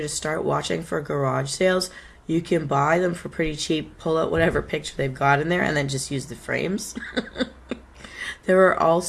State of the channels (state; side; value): identical; both; correlation 1.00